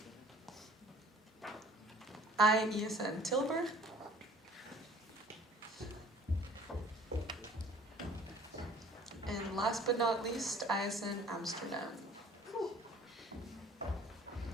Esn Tilburg. And last but not least, Esn Amsterdam.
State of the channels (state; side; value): normal; both; correlation 0.51